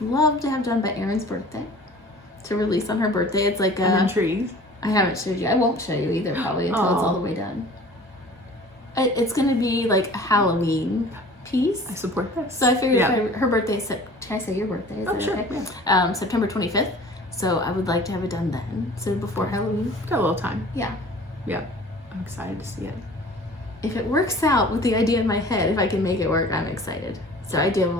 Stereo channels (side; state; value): both; normal; correlation 0.45